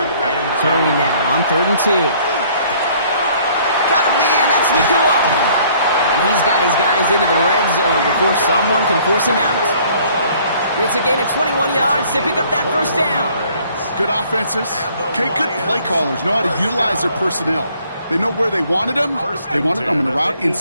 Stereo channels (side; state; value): both; inverted; correlation -0.58